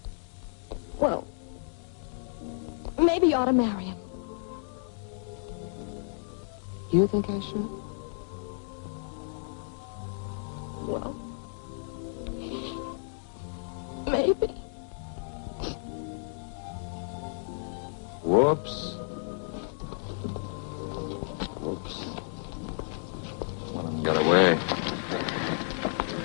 Well, maybe you ought to marry him. You think I should? Well, maybe. Whoops. Whoops. One of them got away.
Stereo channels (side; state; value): right; silent; digital silence